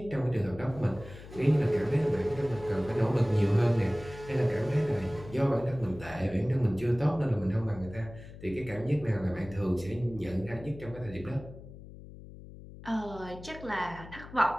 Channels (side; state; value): left; noise; hum, 16 dB below the sound